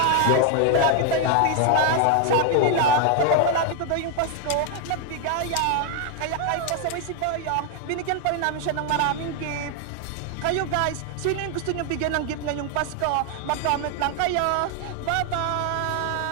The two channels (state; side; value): different; both; correlation 0.00